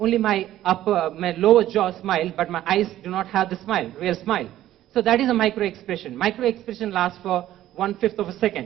my lower jaw smile, but my eyes do not have the smile, real smile. So that is a micro-expression. Micro-expression lasts for 1/5 of a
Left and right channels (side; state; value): left; quieter; 13.4 dB